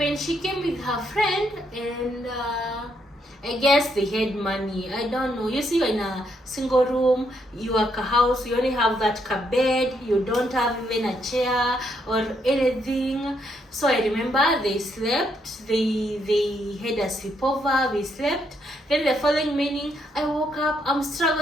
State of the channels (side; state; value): both; normal; correlation 0.75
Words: she came with her friend, and I guess they had money. I don't know. You see, you're in a single room, you are a house, you only have that bed, you don't have even a chair or anything. So I remember they slept, they had a sleepover, we slept. Then the following morning, I woke up, I'm